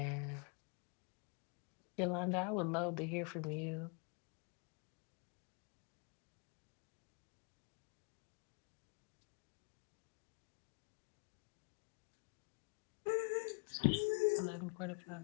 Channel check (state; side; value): quieter; right; 34.6 dB